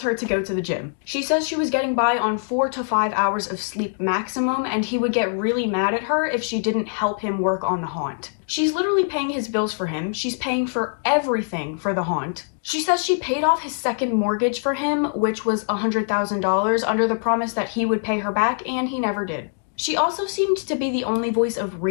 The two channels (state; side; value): silent; right; digital silence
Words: her to go to the gym. She says she was getting by on 4 to 5 hours of sleep maximum, and he would get really mad at her if she didn't help him work on the haunt. She's literally paying his bills for him. She's paying for everything for the haunt. She says she paid off his second mortgage for him, which was $100,000, under the promise that he would pay her back, and he never did. She also seemed to be the only voice of